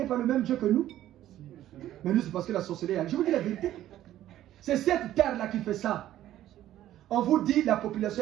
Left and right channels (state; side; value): quieter; left; 13.0 dB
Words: par le même Dieu que nous. Mais nous, c'est parce que la sorcellerie. Je vous dis la vérité. C'est cette terre-là qui fait ça. On vous dit la